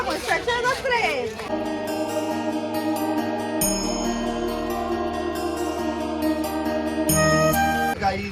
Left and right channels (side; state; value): both; identical; correlation 1.00